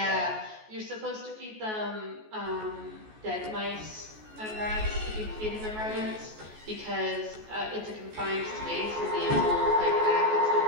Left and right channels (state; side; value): late; left; 14 ms